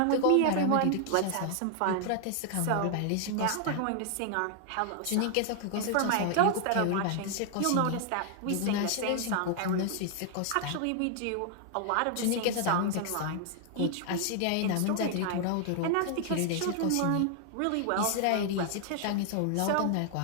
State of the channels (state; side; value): different; both; correlation 0.00